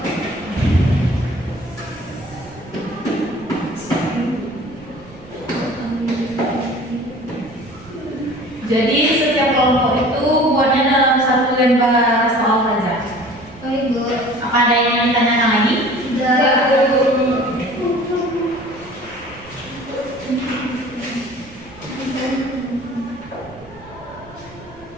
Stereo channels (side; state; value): right; noise; rumble, 22 dB below the sound